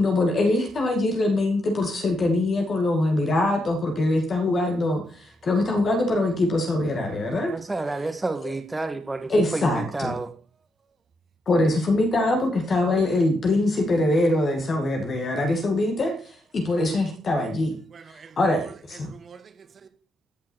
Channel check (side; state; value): both; normal; correlation 0.81